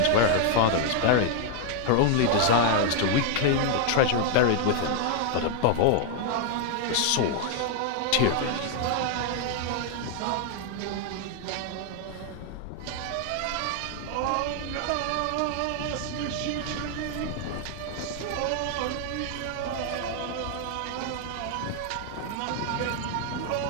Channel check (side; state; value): both; different; correlation 0.00